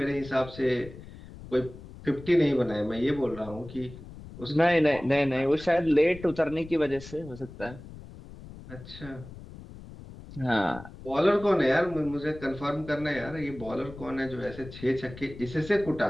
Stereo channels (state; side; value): noise; left; rumble, 15 dB below the sound